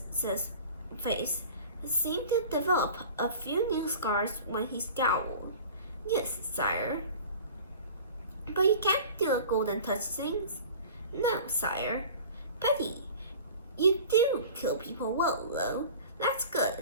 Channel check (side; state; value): both; inverted; correlation -0.41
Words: face seemed to develop a few new scars when he scowled. Yes, sire. But you can't do the golden touch things. No, sire. Betty, you do kill people well, though. That's